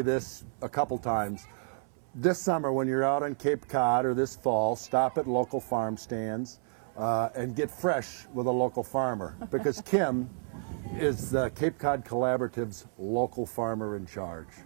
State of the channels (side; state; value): left; silent; 57 dB below the other